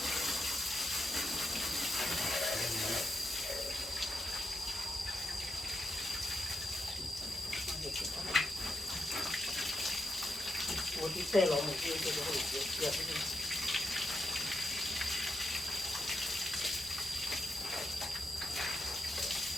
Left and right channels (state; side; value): normal; both; correlation 0.84